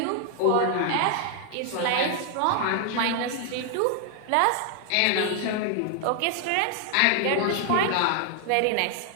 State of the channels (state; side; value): different; both; correlation 0.00